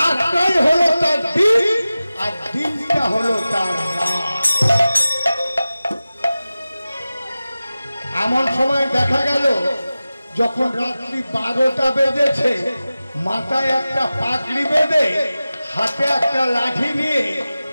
হলো তার দিন আর দিনটা হলো তার রাত। এমন সময় দেখা গেল যখন রাত্রি 12টা বেজেছে, মাথায় একটা পাগড়ি বেঁধে হাতে একটা লাঠি নিয়ে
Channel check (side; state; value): both; inverted; correlation -0.96